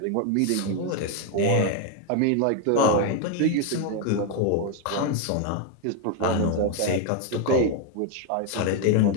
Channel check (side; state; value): both; different; correlation 0.01